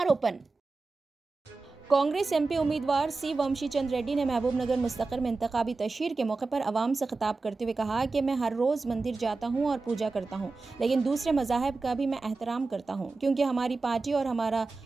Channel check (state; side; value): quieter; left; 3.8 dB